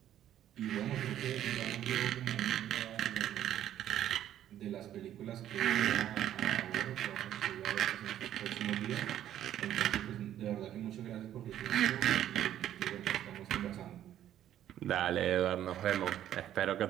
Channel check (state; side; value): quieter; left; 11.5 dB